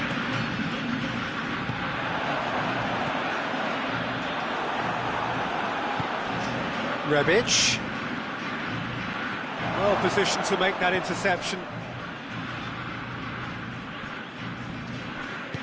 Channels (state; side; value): identical; both; correlation 1.00